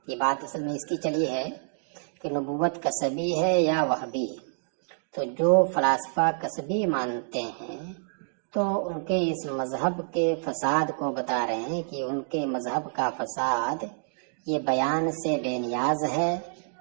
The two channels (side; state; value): left; silent; digital silence